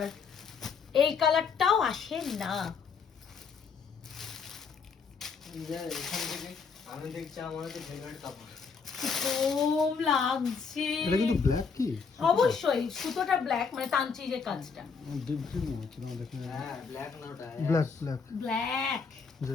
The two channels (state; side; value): quieter; right; 5.6 dB